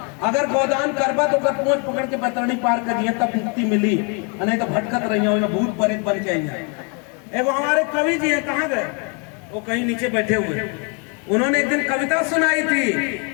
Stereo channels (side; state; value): right; quieter; 35.7 dB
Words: अगर गोदान करबा तो कर पहुंच पकड़ के बतरनी पार कर दिया तब मुक्ति मिली, नहीं तो भटकत रही हो भूत प्रेत बन के आई। एगो हमारे कवि जी है, कहाँ गए वो, कहीं नीचे बैठे हुए। उन्होंने एक दिन कविता सुनाई थी